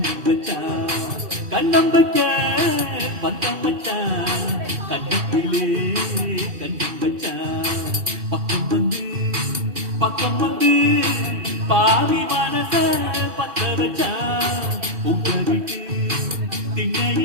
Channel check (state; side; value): late; left; 2.6 ms